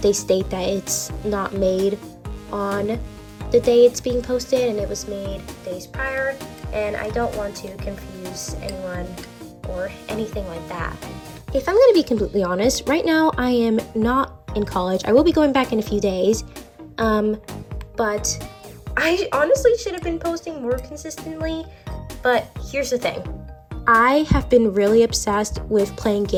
they state that it's not made on the day it's being posted and it was made days prior, and I don't want to confuse anyone or anything like that. If I'm going to be completely honest, right now I am not in college. I will be going back in a few days, but I honestly should have been posting more consistently. But here's the thing. I have been really obsessed with playing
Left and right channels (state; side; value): identical; both; correlation 1.00